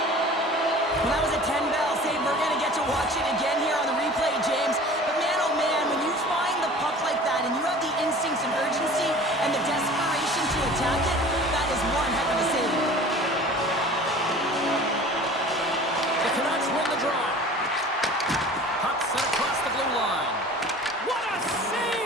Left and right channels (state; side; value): normal; both; correlation 0.43